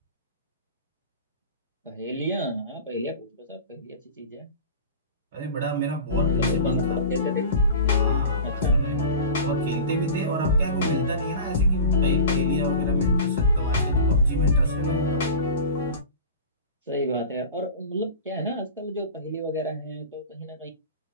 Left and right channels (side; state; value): both; inverted; correlation -0.34